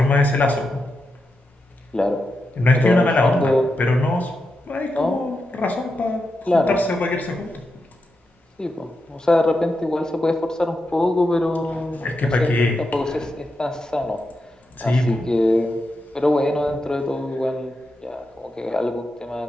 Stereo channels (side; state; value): both; normal; correlation 0.87